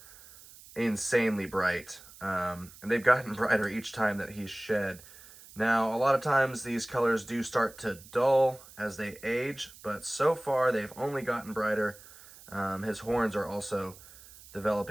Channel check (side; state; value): right; noise; hiss, 20 dB below the sound